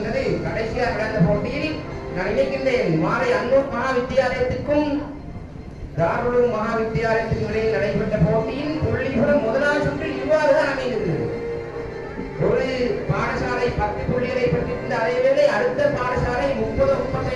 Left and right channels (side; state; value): both; identical; correlation 1.00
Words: கடைசியாக நடந்த போட்டியில் நான் நினைக்கின்றேன் மாலை அன்னூர் மகா வித்தியாலயத்துக்கும் தாருலும் மகா வித்தியாலயத்துக்கும் இடையில் நடைபெற்ற போட்டியின் புள்ளிபுரம் முதலாவது சுற்றில் இவ்வாறுதான் அமைந்தது. ஒரு பாடசாலை 10 புள்ளிகளை பெற்றிருந்த அதேவேளை அடுத்த பாடசாலை